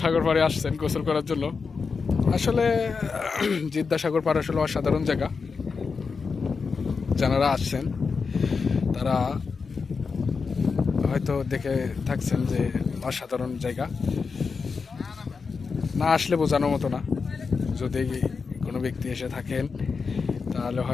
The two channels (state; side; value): quieter; right; 5.0 dB